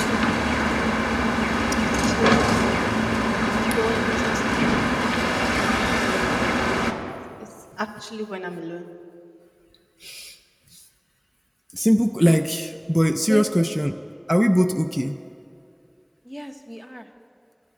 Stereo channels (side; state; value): both; identical; correlation 1.00